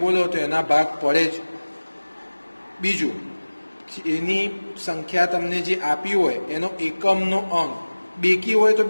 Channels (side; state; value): both; inverted; correlation -1.00